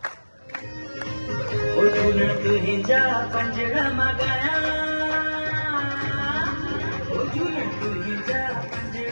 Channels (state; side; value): inverted; both; correlation -1.00